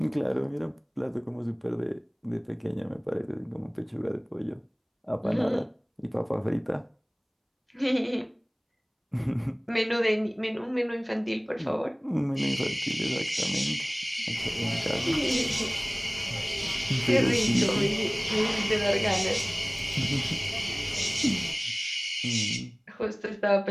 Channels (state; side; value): identical; both; correlation 1.00